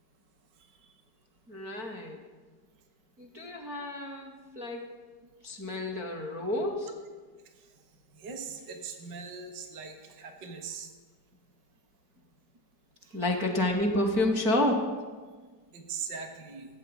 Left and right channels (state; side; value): late; left; 4.5 ms